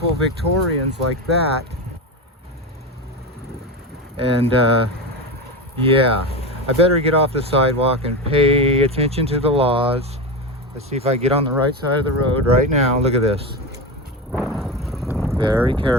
Victorians like that. And yeah, I better get off the sidewalk and pay attention to the laws. Let's see if I get on the right side of the road right now. Look at this. Very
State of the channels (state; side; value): normal; both; correlation 0.19